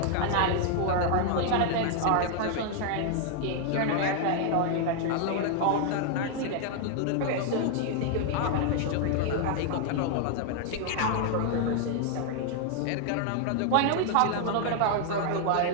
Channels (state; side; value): different; both; correlation 0.00